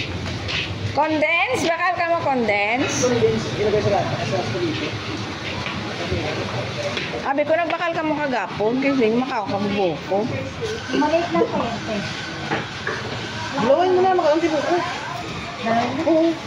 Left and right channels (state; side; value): identical; both; correlation 1.00